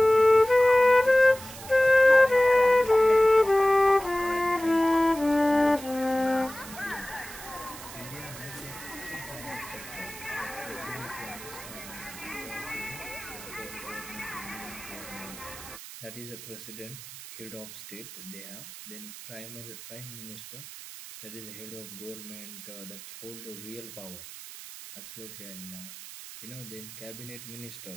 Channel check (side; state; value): right; noise; hiss, 14 dB below the sound